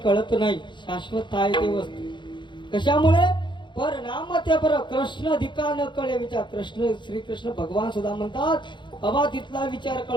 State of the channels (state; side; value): late; right; 0.23 ms